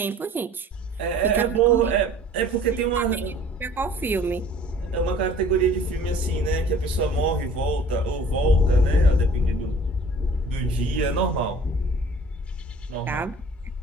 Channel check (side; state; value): both; normal; correlation 0.49